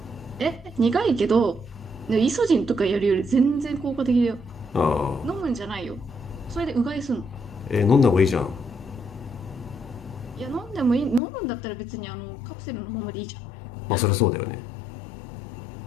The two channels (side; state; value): right; drops out; at 11.2 s